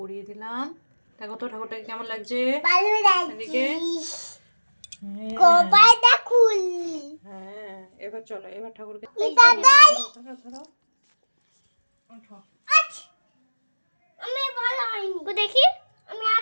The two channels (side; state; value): both; inverted; correlation -1.00